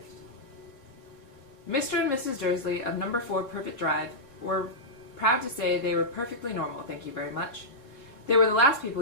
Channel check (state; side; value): late; right; 4.0 ms